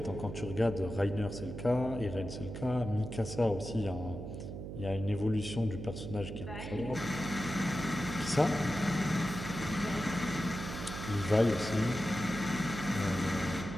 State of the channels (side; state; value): right; noise; hum, 7 dB below the sound